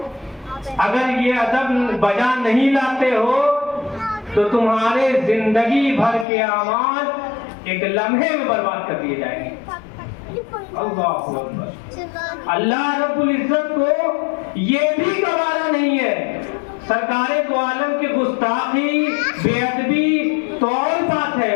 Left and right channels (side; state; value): right; drops out; at 6.2 s